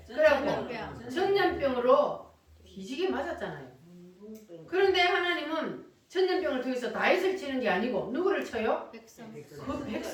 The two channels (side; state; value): both; identical; correlation 1.00